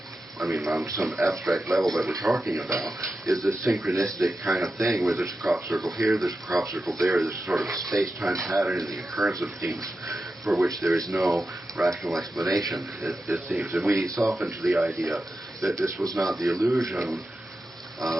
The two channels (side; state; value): both; normal; correlation 0.91